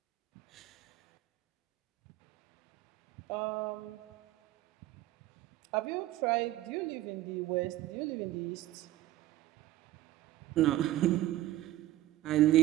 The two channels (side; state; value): left; quieter; 15.4 dB